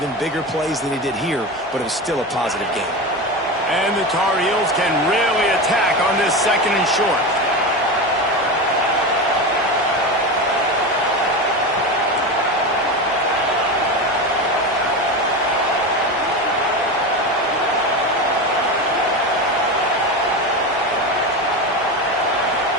bigger plays than he did here, but it was still a positive game. And the Tar Heels can really attack on this 2nd and short.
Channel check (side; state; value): both; normal; correlation 0.22